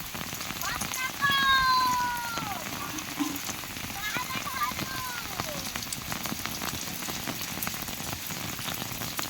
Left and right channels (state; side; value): identical; both; correlation 1.00